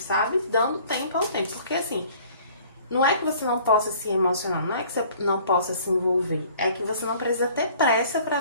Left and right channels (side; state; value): both; inverted; correlation -0.53